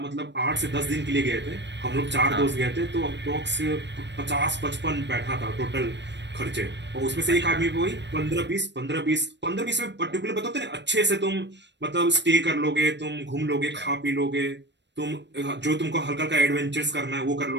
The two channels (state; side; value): late; left; 0.51 ms